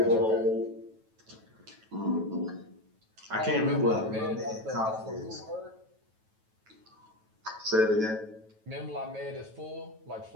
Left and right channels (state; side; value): late; left; 9.2 ms